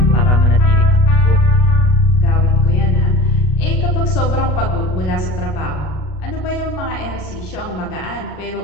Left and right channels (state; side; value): late; right; 33 ms